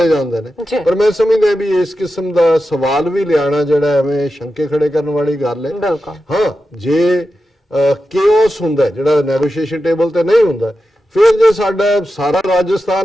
ਜਾਂਦੇ ਨੇ, ਪਰ ਮੈਂ ਸਮਝਦਾ ਵੀ ਇਸ ਕਿਸਮ ਦਾ ਸਵਾਲ ਵੀ ਲਿਆਣਾ ਜਿਹੜਾ ਐਵੇਂ ਸ਼ੰਕੇ ਖੜੇ ਕਰਨ ਵਾਲੀ ਗੱਲ ਹੈ। ਹਾਂ, ਜੇ ਕੇਓਸ ਹੁੰਦਾ ਜਿਹੜਾ ਨੈਗੋਸ਼ੀਏਸ਼ਨ ਟੇਬਲ ਤੇ ਨਹੀਂ ਹੁੰਦਾ, ਫਿਰ ਜੇ ਸਾਡਾ ਸਾਰਾ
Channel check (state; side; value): normal; both; correlation 0.91